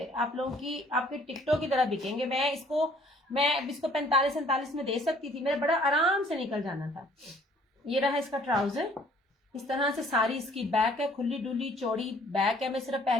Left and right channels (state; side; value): normal; both; correlation 0.58